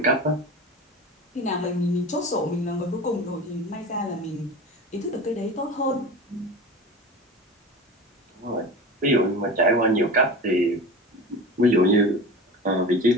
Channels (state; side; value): normal; both; correlation 0.32